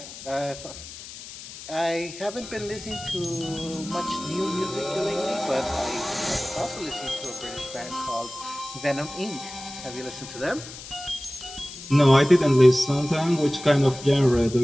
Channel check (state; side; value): noise; left; hiss, 13 dB below the sound